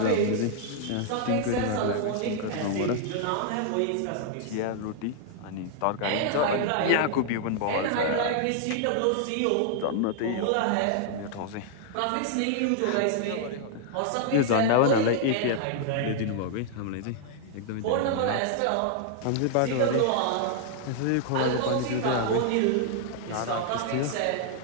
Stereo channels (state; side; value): different; both; correlation -0.01